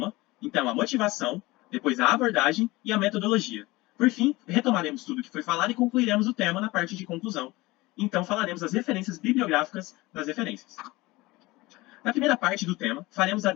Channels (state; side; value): quieter; right; 20.9 dB